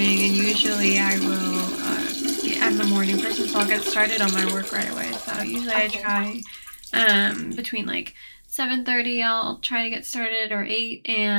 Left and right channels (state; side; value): inverted; both; correlation -1.00